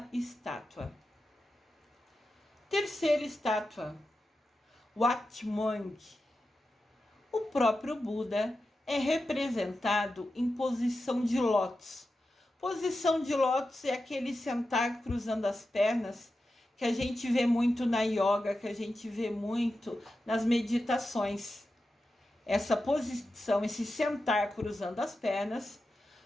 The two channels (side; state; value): both; normal; correlation 0.91